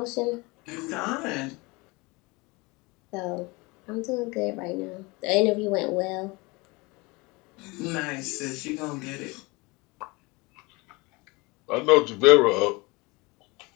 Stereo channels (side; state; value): right; quieter; 25.3 dB